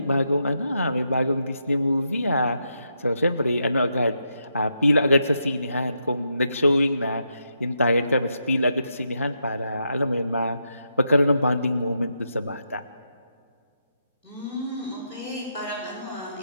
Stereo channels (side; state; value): both; inverted; correlation -0.82